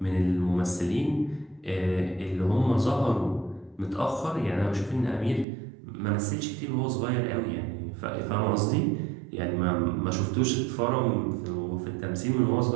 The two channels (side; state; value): left; drops out; at 5.5 s